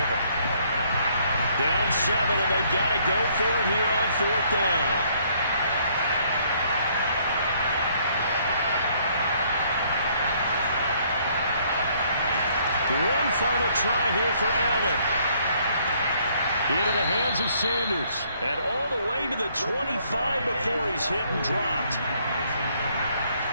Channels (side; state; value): both; inverted; correlation -0.65